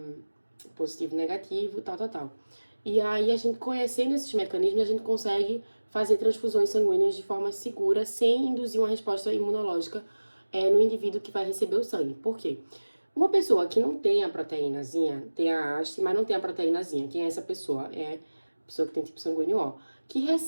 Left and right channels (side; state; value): both; inverted; correlation -1.00